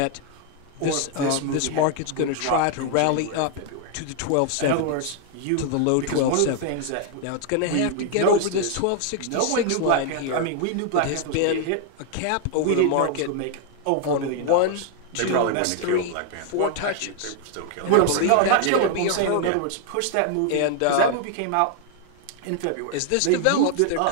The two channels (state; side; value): different; both; correlation 0.00